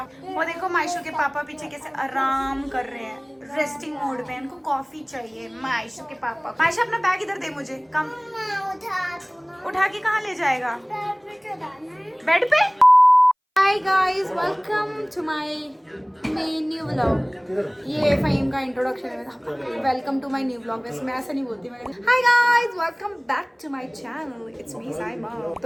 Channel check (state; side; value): identical; both; correlation 1.00